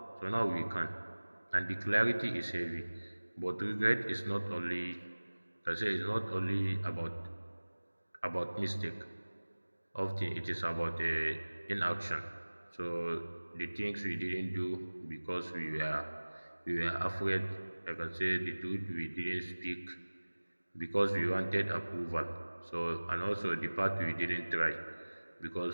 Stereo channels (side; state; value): both; inverted; correlation -1.00